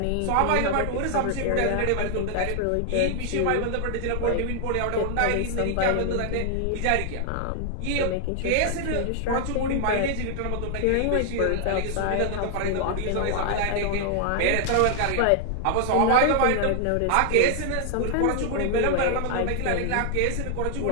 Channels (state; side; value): different; both; correlation 0.00